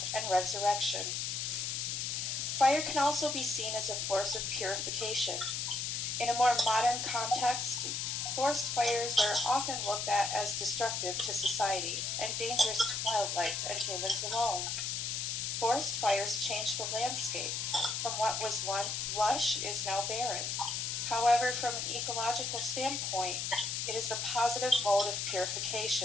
and resurrection. Fire can also be seen as a force of purification. In a more modern context, forest fires are often looked at as destructive to society and dangerous to wildlife and humans alone. Forest fires change the landscape. From what was once lush is now barren. However, from an ecological standpoint, it is the positive mode of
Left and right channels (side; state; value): left; noise; hiss, 1 dB below the sound